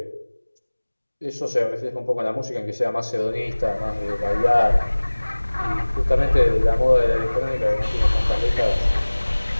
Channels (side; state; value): both; inverted; correlation -1.00